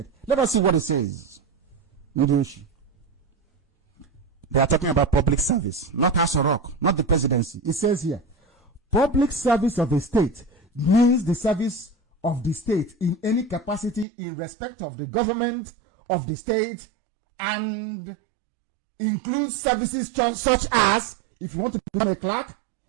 Let us see what it says. They are talking about public service, not House of Rock, not the presidency. It says here, public service of a state means the service of the state in any capacity in respect of the government of the state, and includes services such as, if you want to become a clerk,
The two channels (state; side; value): drops out; left; at 14.1 s